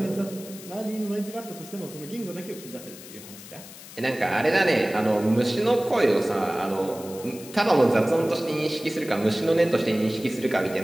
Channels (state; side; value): noise; left; hiss, 16 dB below the sound